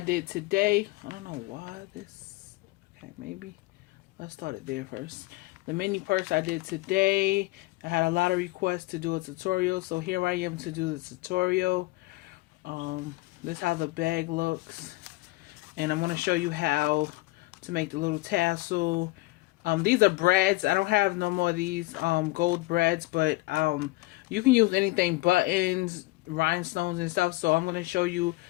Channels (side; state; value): right; quieter; 21.4 dB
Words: today. I don't know why this, okay, maybe let's start it there first. The mini purse I did today, I had a lot of requests to do a tutorial, so here I am to do the tutorial. This is how the bag looks, and I'm going to show you how to make the little tassel. These are brads. I don't have no more of these gold brads, but you can use anything, buttons, rhinestones and stuff. So I'm going to show you